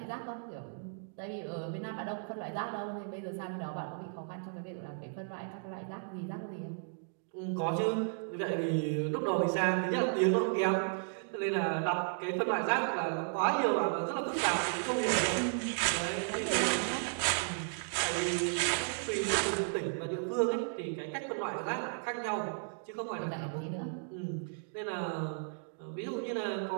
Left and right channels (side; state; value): left; silent; digital silence